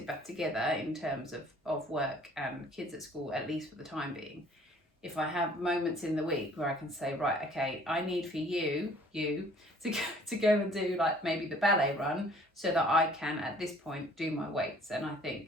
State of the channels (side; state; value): both; normal; correlation 0.55